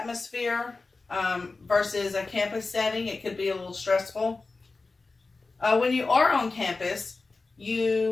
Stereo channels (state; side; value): quieter; right; 3.8 dB